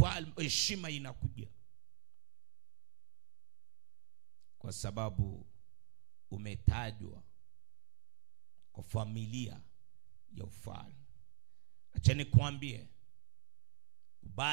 heshima inakuja kwa sababu umetajwa kwa familia ya ufalme. Acha nikwambie,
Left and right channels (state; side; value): silent; left; digital silence